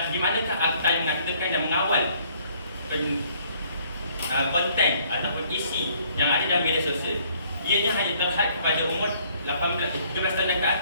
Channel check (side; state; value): both; inverted; correlation -0.63